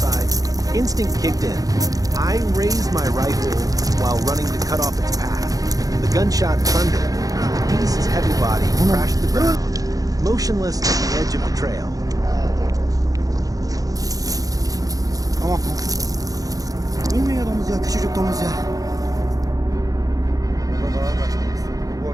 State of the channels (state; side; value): late; left; 0.17 ms